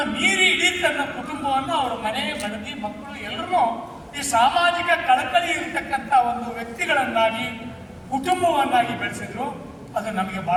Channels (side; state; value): both; identical; correlation 1.00